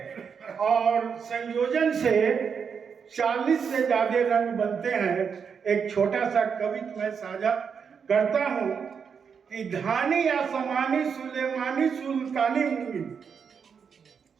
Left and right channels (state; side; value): quieter; left; 6.5 dB